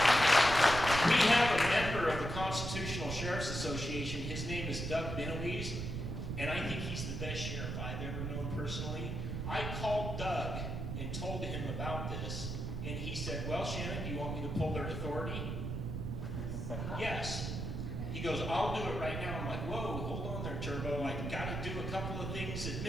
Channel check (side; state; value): right; noise; rumble, 4 dB below the sound